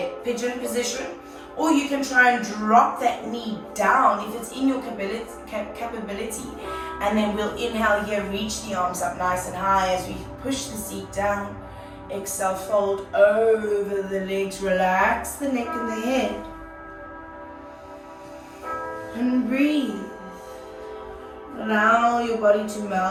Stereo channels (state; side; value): identical; both; correlation 1.00